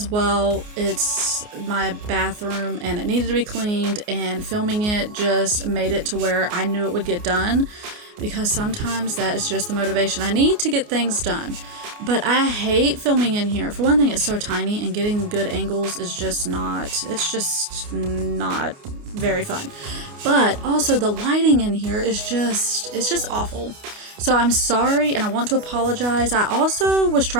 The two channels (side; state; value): left; late; 29 ms